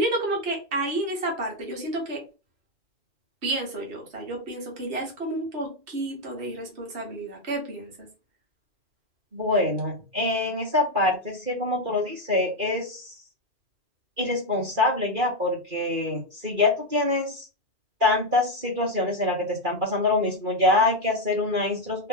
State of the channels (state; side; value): late; left; 2.4 ms